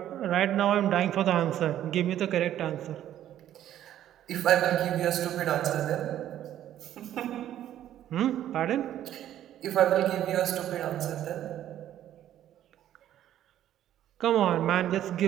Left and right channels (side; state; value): left; quieter; 11.7 dB